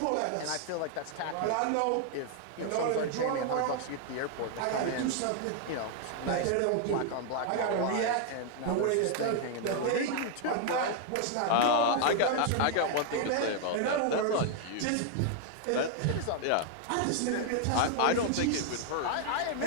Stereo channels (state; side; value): different; both; correlation 0.00